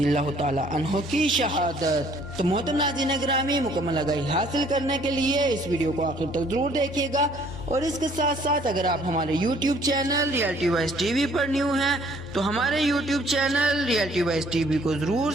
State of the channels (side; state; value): both; normal; correlation 0.60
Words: اللہ تعالی عنہ کی شہادت۔ تو محترم ناظرین گرامی، مکمل آگاہی حاصل کرنے کے لیے اس ویڈیو کو آخر تک ضرور دیکھیے گا، اور اس کے ساتھ ساتھ اگر آپ ہمارے YouTube channel reality voice TV وی پر نیو ہیں تو ہمارے YouTube channel reality voice TV وی کو ضرور